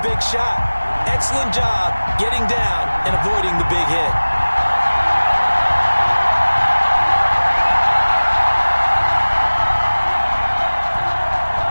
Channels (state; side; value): inverted; both; correlation -1.00